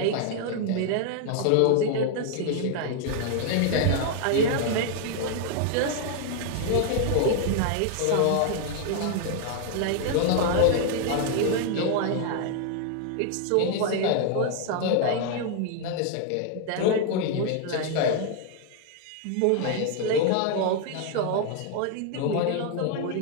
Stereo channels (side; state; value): both; different; correlation 0.00